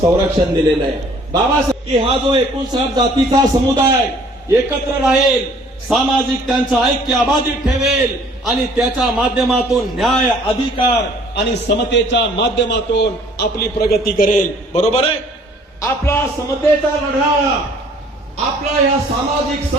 दिलेलं आहे. बाबासाहेब हा जो 59 जातीचा समुदाय एकत्र राहील, सामाजिक त्यांचं ऐक्य अबाधित ठेवेल आणि त्याच्या माध्यमातून न्याय, अधिकार आणि समतेच्या माध्यमातून आपली प्रगती करेल. बरोबर आहे. आपला समतेचा लढा, आपला या सामाजिक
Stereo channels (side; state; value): both; normal; correlation 0.56